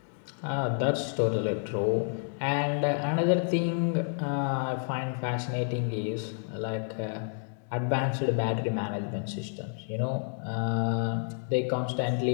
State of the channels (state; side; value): silent; right; 58 dB below the other